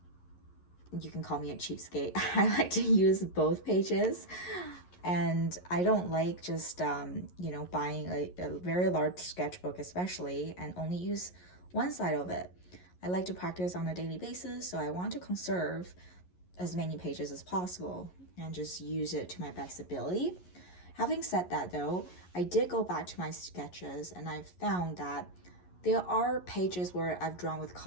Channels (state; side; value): late; right; 11 ms